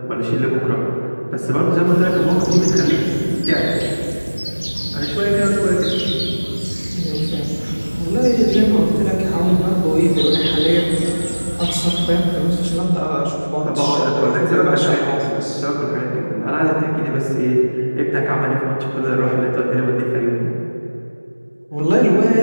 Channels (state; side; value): inverted; both; correlation -1.00